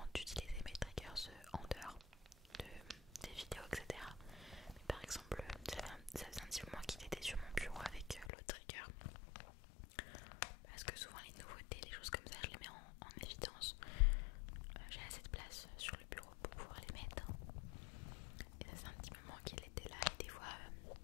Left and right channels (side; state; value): right; drops out; at 8.3 s